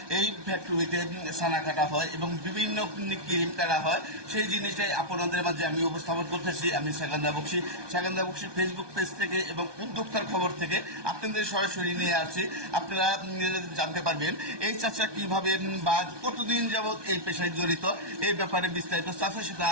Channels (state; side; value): late; left; 1.2 ms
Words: এই ফ্যাক্টরিতে ছানা কাটা হয় এবং বিভিন্ন ক্রিম কাটা হয়। সেই জিনিসটাই আপনাদের মাঝে আমি উপস্থাপন করতেছি। আমি সেকেন্দার বক্সি। সেকেন্দার বক্সির ফেসবুক পেজ থেকে এবং উদ্যোক্তার খবর থেকে আপনাদের সরাসরি নিয়ে আসছি। আপনারা জানতে পারবেন এই চাচা কিভাবে বা কতদিন যাবৎ এই পেশায় জড়িত, এই ব্যাপারে বিস্তারিত চাচার সাথে